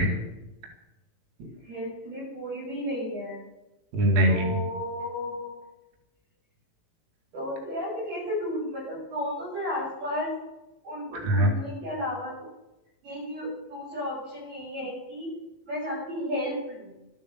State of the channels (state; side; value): late; left; 18 ms